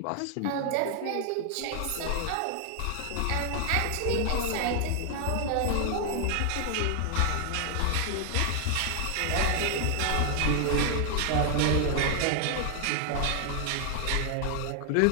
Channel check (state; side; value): different; both; correlation 0.00